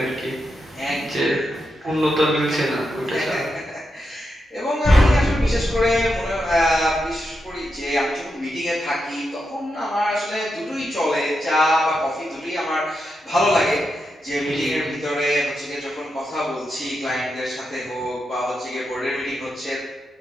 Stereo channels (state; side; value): normal; both; correlation 0.86